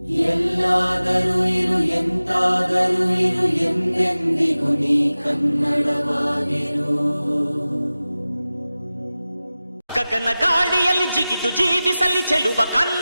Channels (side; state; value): both; inverted; correlation -0.96